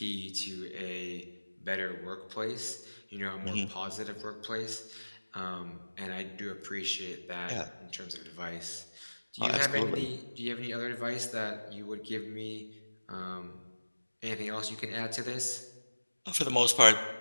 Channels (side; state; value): both; inverted; correlation -1.00